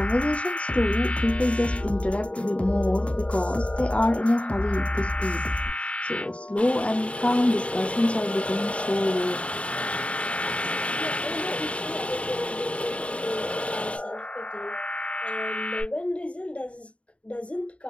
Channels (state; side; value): late; right; 0.063 ms